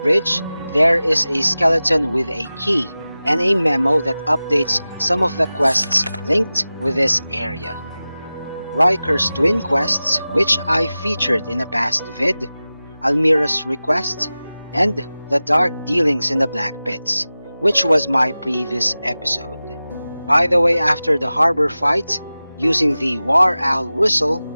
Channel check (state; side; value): inverted; both; correlation -0.96